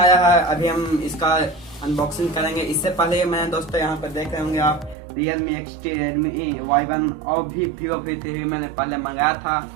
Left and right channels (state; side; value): drops out; left; at 5.0 s